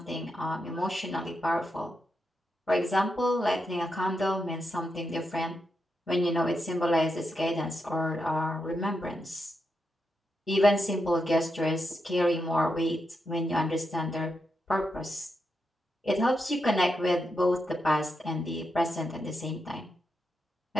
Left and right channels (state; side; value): normal; both; correlation 0.85